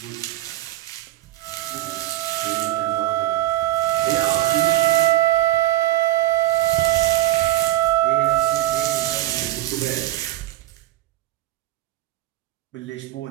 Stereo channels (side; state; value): left; quieter; 15.5 dB